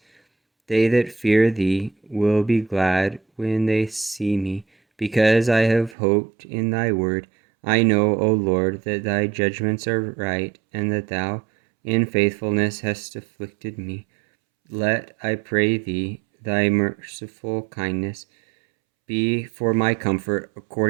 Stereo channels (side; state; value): left; drops out; at 6.0 s